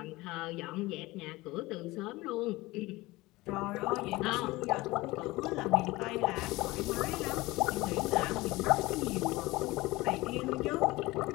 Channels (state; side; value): quieter; right; 20.4 dB